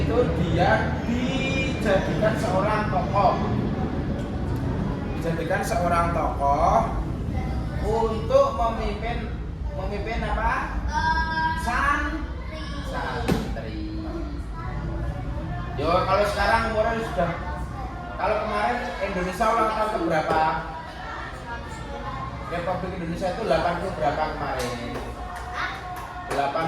dia dijadikan seorang tokoh untuk memimpin apa? Santri. Yo kalau sekarang umurnya sudah, kalau kemarin Indonesia ulang tahun ke berapa? Republik Indonesia itu 80 berapa kemarin?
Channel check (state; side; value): identical; both; correlation 1.00